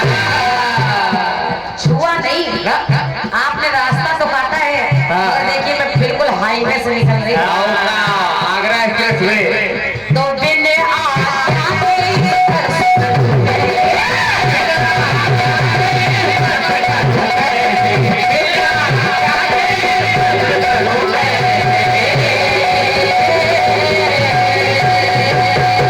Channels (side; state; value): both; identical; correlation 1.00